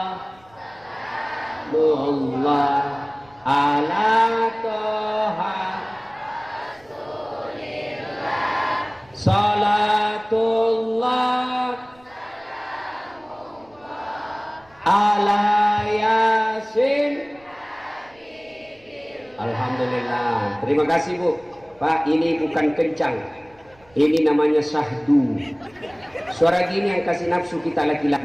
Allah ala toha salatullah ala yasin. Alhamdulillah, terima kasih Bu. Pak, ini bukan kencang, ini namanya syahdu. Suara gini yang kasih nafsu kita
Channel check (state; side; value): noise; right; rumble, 29 dB below the sound